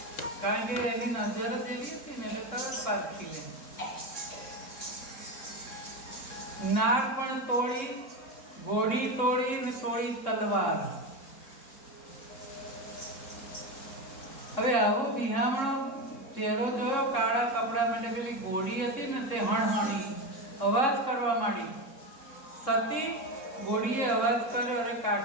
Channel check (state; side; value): late; right; 3.6 ms